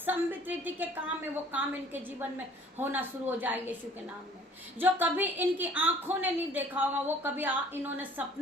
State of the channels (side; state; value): both; normal; correlation 0.53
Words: रीति के काम है वो काम इनके जीवन में होना शुरू हो जाए यीशु के नाम में। जो कभी इनकी आंखों ने नहीं देखा होगा, वो कभी इन्होंने